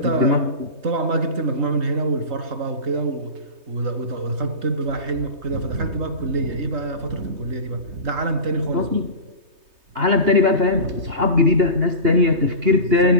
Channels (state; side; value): late; left; 3.2 ms